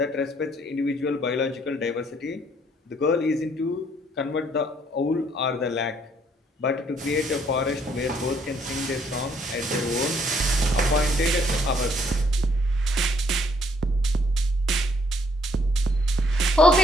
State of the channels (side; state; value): both; normal; correlation 0.66